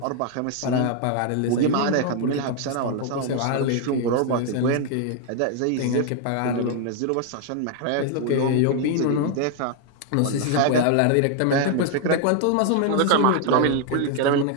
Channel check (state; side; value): different; both; correlation 0.00